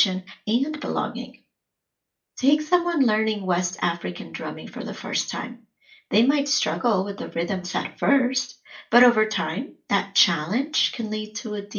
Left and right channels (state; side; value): identical; both; correlation 1.00